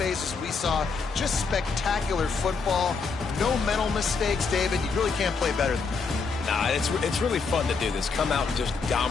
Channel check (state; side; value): quieter; right; 4.8 dB